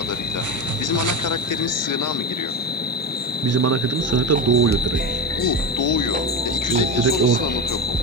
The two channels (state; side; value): normal; both; correlation 0.19